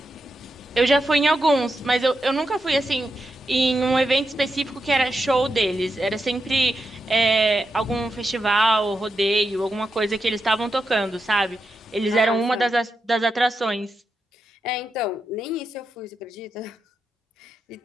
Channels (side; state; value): both; normal; correlation 0.86